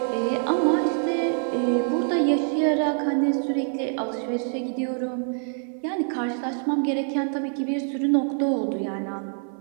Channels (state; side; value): silent; left; digital silence